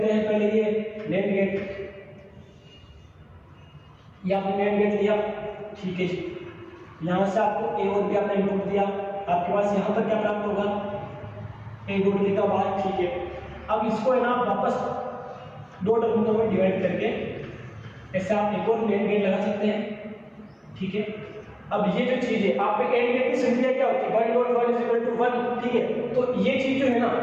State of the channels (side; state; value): both; identical; correlation 1.00